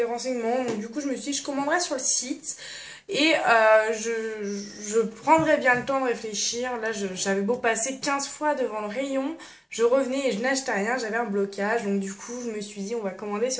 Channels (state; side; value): identical; both; correlation 1.00